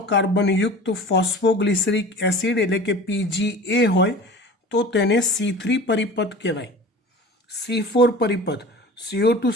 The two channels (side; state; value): both; normal; correlation 0.39